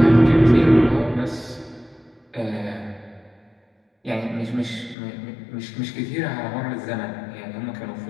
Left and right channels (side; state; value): right; drops out; at 5.0 s